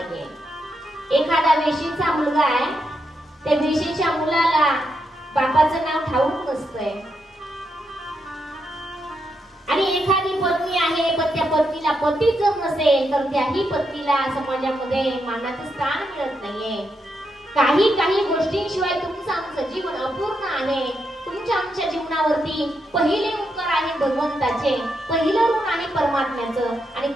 एखादा वेशीचा मुलगा आहे, त्या वेशीच्या मुलाला बापाचं नाव ठाऊक नसतंय. आणि एखादी पत्नी आहे, पण त्या पत्नीला पतीच जर नसेल तर त्याही पत्नीला समाजामध्ये मानाचं स्थान मिळत नाहीये. काही गोष्टींशिवाय तुमचं आमचं जीवन अपूर्ण आहे. तुमच्या आमच्या जीवनावरती पहिले उपकार आहे भगवंताचे, पहिलं ऋण आहे परमात्म्याचं. आणि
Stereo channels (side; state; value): both; normal; correlation 0.82